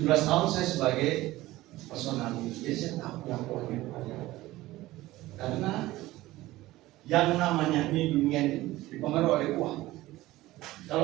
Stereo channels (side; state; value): left; quieter; 17.4 dB